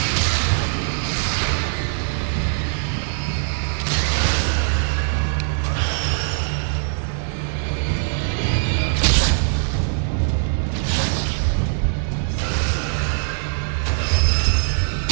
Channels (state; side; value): silent; left; 55 dB below the other